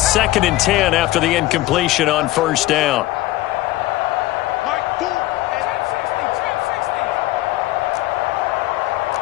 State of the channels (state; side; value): quieter; right; 16.9 dB